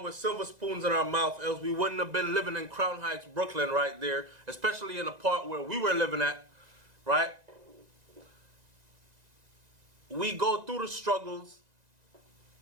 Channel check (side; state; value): left; late; 1.9 ms